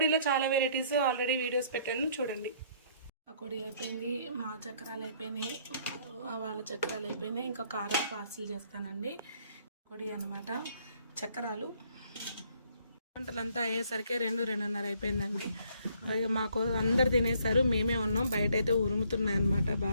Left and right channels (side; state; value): both; inverted; correlation -0.64